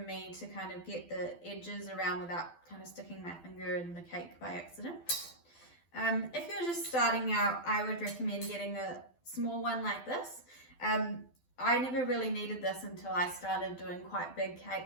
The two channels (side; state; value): right; late; 12 ms